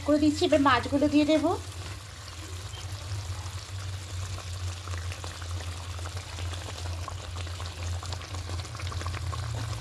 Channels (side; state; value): both; identical; correlation 1.00